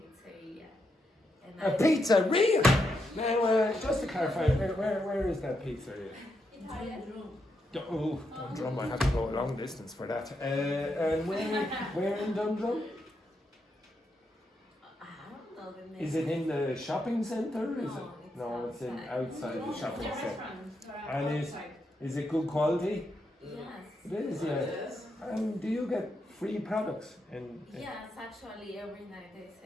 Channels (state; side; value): normal; both; correlation 0.82